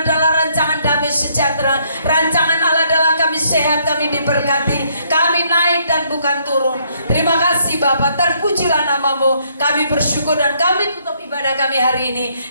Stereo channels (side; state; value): both; inverted; correlation -0.69